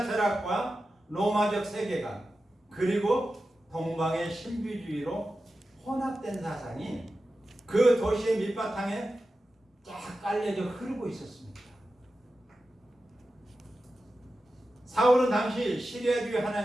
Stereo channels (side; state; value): both; normal; correlation 0.92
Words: 철학과 로마적 세계관 그리고 동방의 신비주의로 혼합된 사상이 그 도시의 밑바탕에 쫙 깔려져 흐르고 있었습니다. 사울은 당시 시리아 주